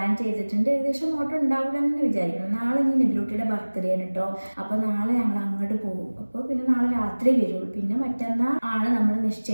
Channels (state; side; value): inverted; both; correlation -1.00